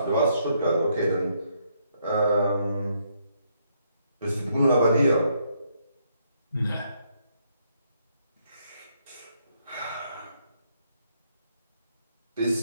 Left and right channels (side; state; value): both; inverted; correlation -0.73